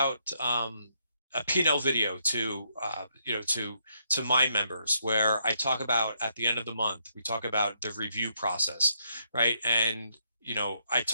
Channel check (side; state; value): both; inverted; correlation -0.75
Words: a P&L video to to my members, where I talk about at the end of the month, we talk about the review process, right? And I